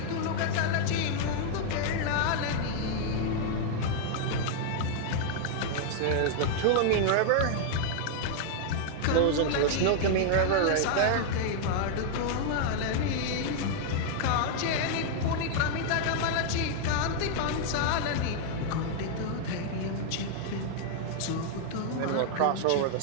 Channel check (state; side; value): different; both; correlation -0.01